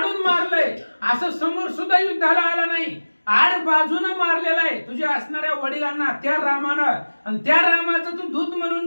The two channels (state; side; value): inverted; both; correlation -1.00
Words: मारलंय, असं समोर सुद्धा युद्धाला आला नाही, आड बाजूनं मारलेला आहे तुझ्या असणाऱ्या वडिलांना त्या रामानं, आणि त्या रामाचं तू दूत